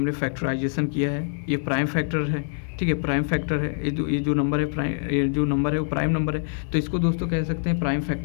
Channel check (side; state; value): right; silent; digital silence